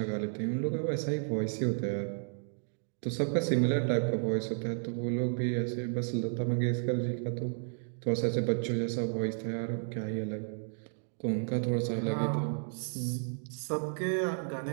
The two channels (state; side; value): silent; left; digital silence